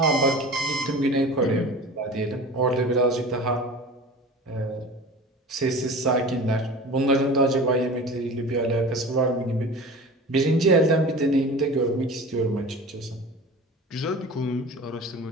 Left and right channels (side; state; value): both; normal; correlation 0.36